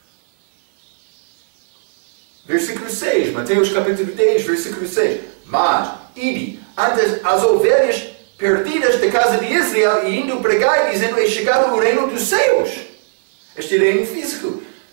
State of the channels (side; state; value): left; silent; 62 dB below the other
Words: Versículo 6, Mateus capítulo 10, versículo 6. Mas, ide, antes as ovelhas perdidas da casa de Israel, e indo pregar, dizendo, é chegado o reino dos céus. Este reino físico.